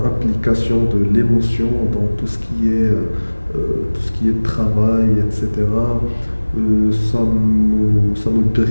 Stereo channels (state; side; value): inverted; both; correlation -1.00